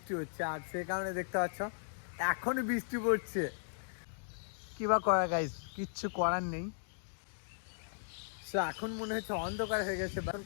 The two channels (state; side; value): silent; right; digital silence